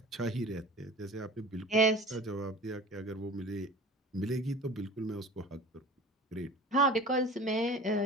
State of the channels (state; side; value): normal; both; correlation 0.40